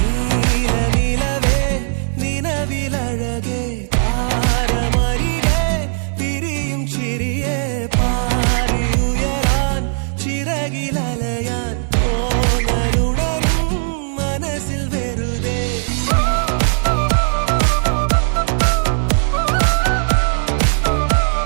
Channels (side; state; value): left; silent; digital silence